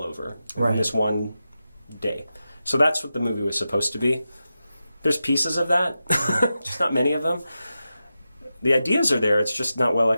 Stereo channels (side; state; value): both; inverted; correlation -0.91